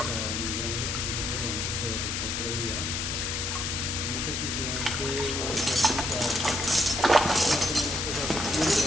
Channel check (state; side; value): noise; left; hiss, 1 dB below the sound